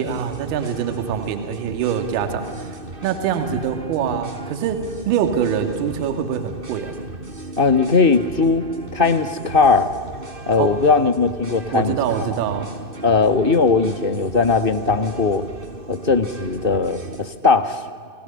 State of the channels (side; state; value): left; late; 2.6 ms